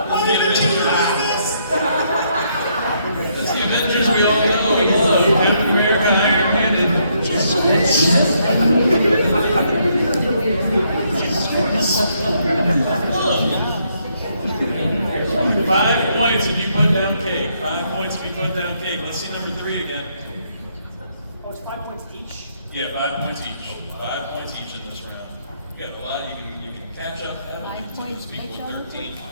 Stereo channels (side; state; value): both; inverted; correlation -0.73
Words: That's the Avengers we all know and love. Captain America, Iron Man, and Jesus Christ. 5 points if you put down cake. 5 points if you put down cake. Let's see number 3 again. Oh, it's 5 points each? Yeah, 5 points each. 5 points each in this round. You got a lot. You can catch up. 5 points equals 13.